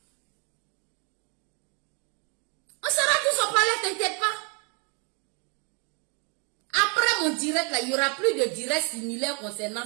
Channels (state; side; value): quieter; left; 35.7 dB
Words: On sera tous au palais, t'inquiète pas. Après mon direct là, il n'y aura plus de direct similaire